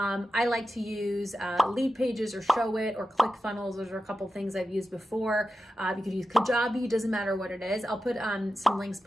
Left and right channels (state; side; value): normal; both; correlation 0.92